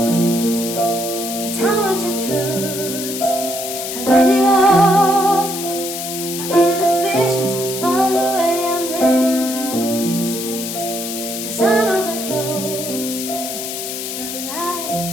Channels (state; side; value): noise; left; hiss, 6 dB below the sound